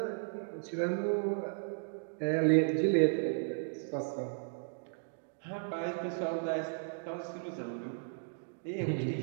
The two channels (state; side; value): silent; left; digital silence